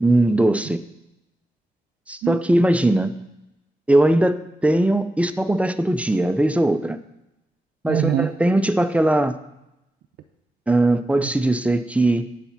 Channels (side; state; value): both; normal; correlation 0.91